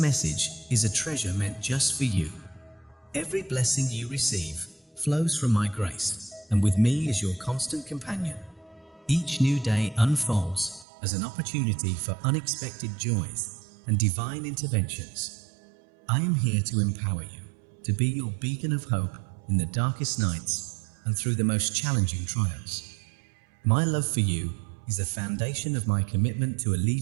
is a treasure meant just for you. Every blessing you receive flows from my grace, and with me is your constant companion. Each new day unfolds as an opportunity for unexpected joys and divine interventions. I am here to empower you, to be your beacon of hope in the darkest nights and through the most challenging trials. My love for you is the foundation of my commitment to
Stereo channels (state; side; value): drops out; left; at 10.9 s